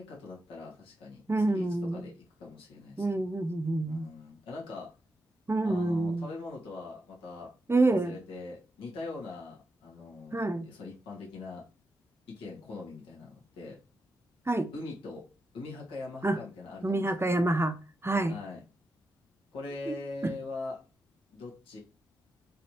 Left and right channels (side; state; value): both; normal; correlation 0.87